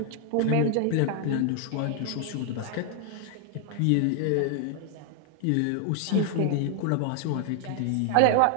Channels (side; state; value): both; different; correlation 0.00